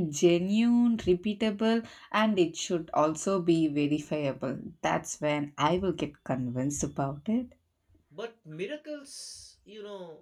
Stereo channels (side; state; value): both; identical; correlation 1.00